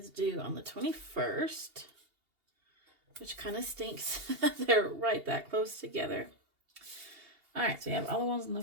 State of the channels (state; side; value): late; left; 2.8 ms